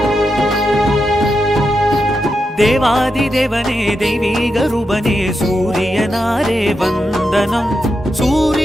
தேவாதி தேவனே தெய்வீக ரூபனே சூரியனாரே வந்தனம்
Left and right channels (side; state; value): both; normal; correlation 0.86